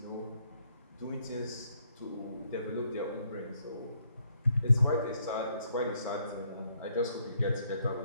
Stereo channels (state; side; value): inverted; both; correlation -0.71